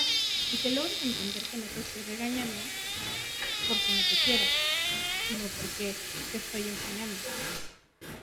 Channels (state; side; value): identical; both; correlation 1.00